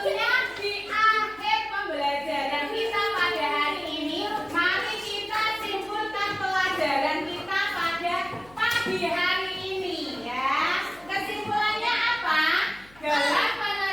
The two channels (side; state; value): left; noise; hum, 26 dB below the sound